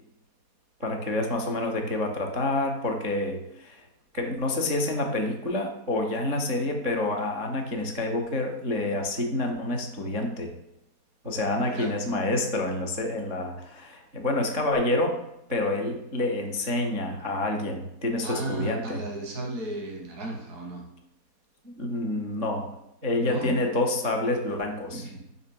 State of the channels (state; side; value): late; left; 4.2 ms